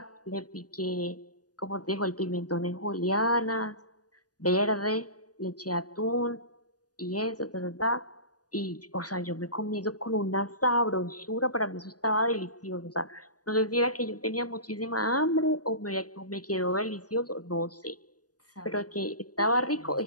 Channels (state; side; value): late; right; 0.68 ms